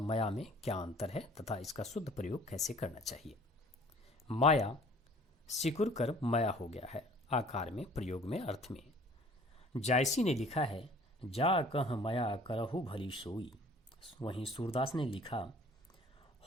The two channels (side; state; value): both; normal; correlation 0.52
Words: में क्या अंतर है तथा इसका शुद्ध प्रयोग कैसे करना चाहिए। माया सिकुड़ कर माया हो गया है, आकार में, प्रयोग में, अर्थ में। जायसी ने लिखा है, जा कह माया करहु भली सोई। वहीं सूरदास ने लिखा,